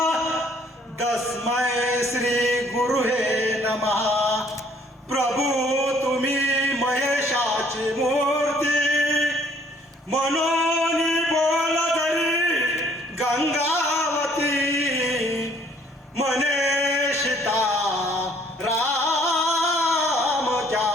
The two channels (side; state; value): both; normal; correlation 0.61